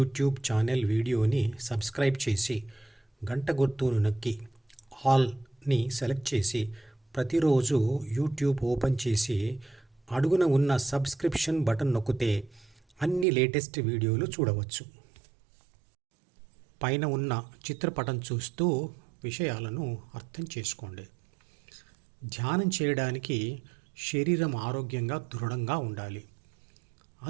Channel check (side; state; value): left; drops out; at 13.2 s